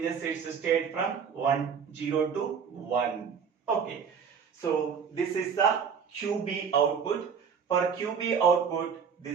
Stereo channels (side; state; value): left; quieter; 6.6 dB